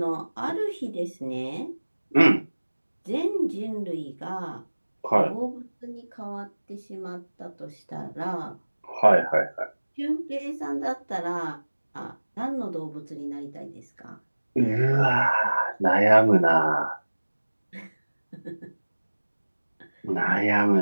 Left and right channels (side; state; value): both; inverted; correlation -1.00